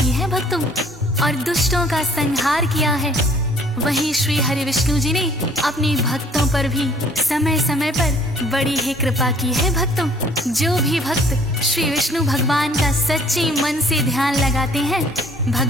है भक्तों, और दुष्टों का संहार किया है। वहीं श्री हरि विष्णु जी ने अपने भक्तों पर भी समय समय पर बड़ी ही कृपा की है। भक्तों, जो भी भक्त श्री विष्णु भगवान का सच्चे मन से ध्यान लगाते हैं,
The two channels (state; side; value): normal; both; correlation 0.57